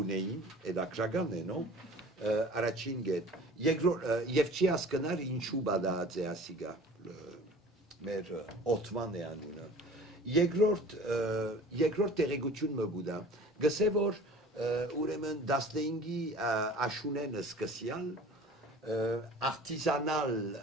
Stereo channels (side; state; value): both; normal; correlation 0.44